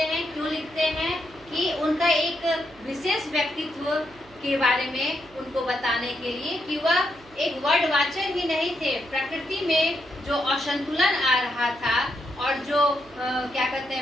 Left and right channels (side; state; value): right; noise; hum, 25 dB below the sound